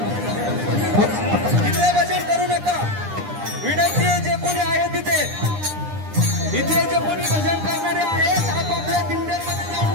तिथे भजन करू नका, विनंती आहे जे कोणी आहे तिथे इथे जे कोणी भजन करणारे आहेत आपापल्या दिंड्यांमध्ये जाऊन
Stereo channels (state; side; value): late; left; 9.8 ms